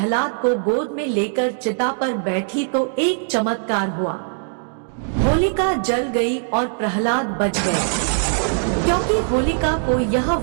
को गोद में लेकर चिता पर बैठी तो एक चमत्कार हुआ। होलिका जल गई और प्रहलाद बच गए, क्योंकि होलिका को यह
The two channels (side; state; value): left; silent; digital silence